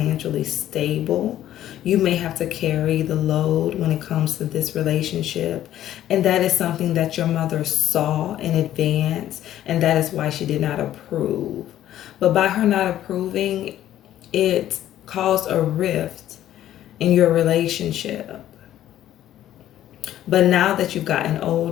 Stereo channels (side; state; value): right; quieter; 12.4 dB